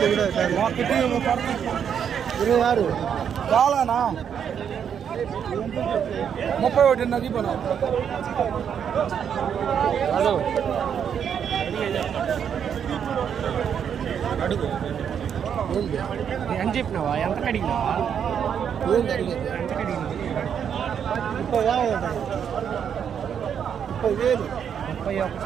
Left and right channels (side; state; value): left; quieter; 8.0 dB